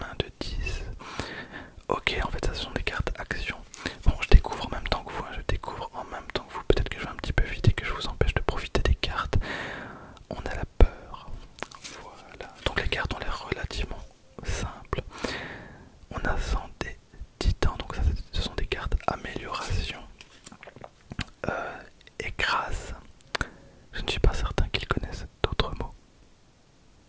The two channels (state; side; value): identical; both; correlation 1.00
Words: de 10. Ok, en fait, ça ce sont des cartes action. Bon, je découvre en même temps que vous, hein, je découvre en même temps que vous. Peut-être que je vais un petit peu vite et que je vous empêche de profiter des cartes. On a la peur. Voilà. Donc les cartes ont l'air relativement simples. On a santé, titan, donc ça ce sont des cartes amélioration. Écrase. Je ne suis pas certain qu'ils connaissent d'autres mots.